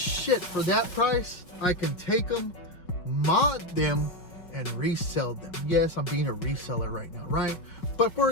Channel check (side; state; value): right; late; 5.4 ms